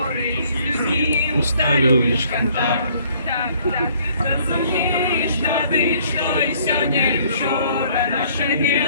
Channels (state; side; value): inverted; both; correlation -0.61